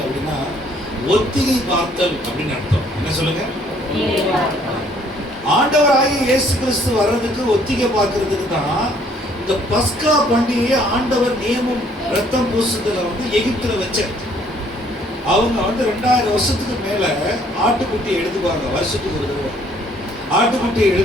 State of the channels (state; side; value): normal; both; correlation 0.62